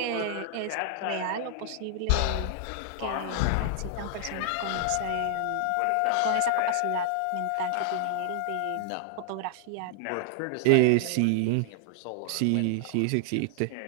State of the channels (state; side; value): different; both; correlation -0.01